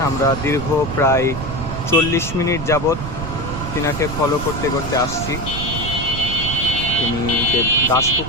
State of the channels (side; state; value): right; noise; rumble, 7 dB below the sound